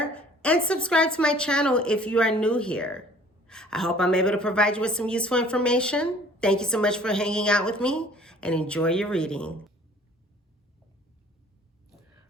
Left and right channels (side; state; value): both; normal; correlation 0.52